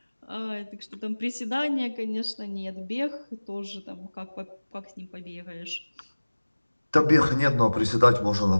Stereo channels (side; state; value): both; inverted; correlation -1.00